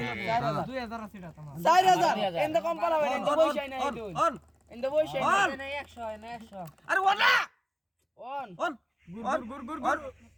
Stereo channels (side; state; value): both; identical; correlation 1.00